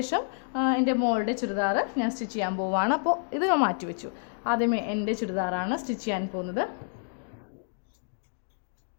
എൻ്റെ മോളുടെ ചുരിദാർ ഞാൻ സ്റ്റിച്ച് ചെയ്യാൻ പോവുകയാണ്. അപ്പോൾ ഇത് ഞാൻ മാറ്റി വെച്ചു. ആദ്യമേ എൻ്റെ ചുരിദാറാണ് സ്റ്റിച്ച് ചെയ്യാൻ പോകുന്നത്.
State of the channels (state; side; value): silent; right; digital silence